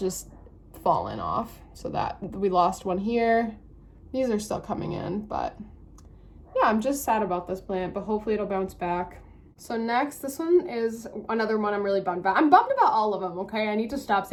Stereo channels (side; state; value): both; identical; correlation 1.00